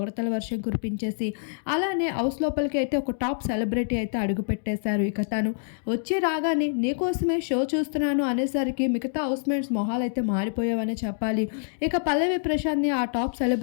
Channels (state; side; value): silent; right; digital silence